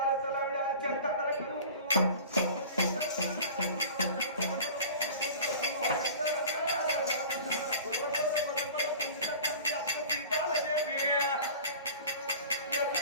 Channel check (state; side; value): inverted; both; correlation -0.40